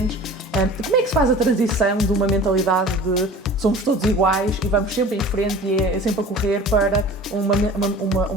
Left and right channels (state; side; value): normal; both; correlation 0.42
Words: Como é que se faz a transição de uma mentalidade de somos todos iguais e vamos sempre em frente e é sempre a correr para